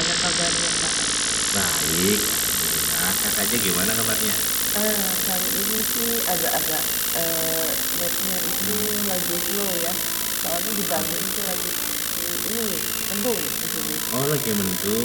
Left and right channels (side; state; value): both; identical; correlation 1.00